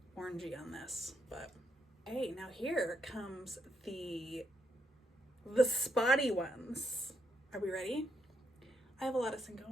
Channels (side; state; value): both; normal; correlation 0.78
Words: orangey on this, but hey, now here comes the spotty ones. Are we ready? I have a lot of